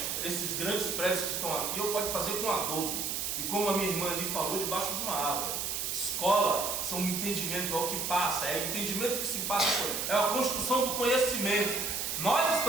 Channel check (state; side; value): noise; right; hiss, 1 dB below the sound